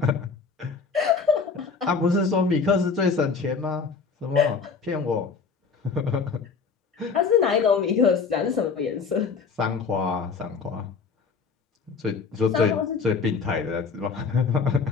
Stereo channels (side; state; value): right; quieter; 5.2 dB